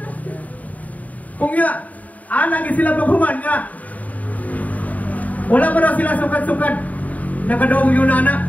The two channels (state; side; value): late; right; 0.073 ms